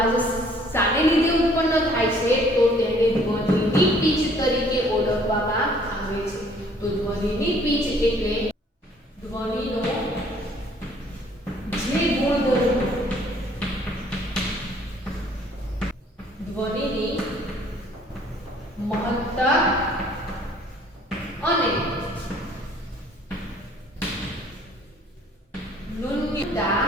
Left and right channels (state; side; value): normal; both; correlation 0.59